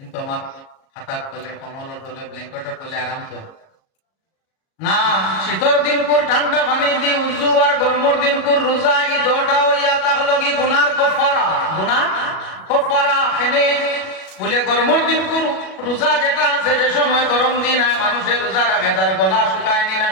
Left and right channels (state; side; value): late; right; 37 ms